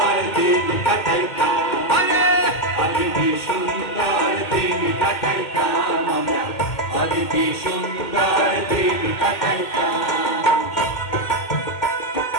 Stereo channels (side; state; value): right; late; 2.1 ms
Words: দিন কাটাইতাম, আগে কি সুন্দর দিন কাটাইতাম আমরা, আগে কি সুন্দর দিন কাটাইতাম।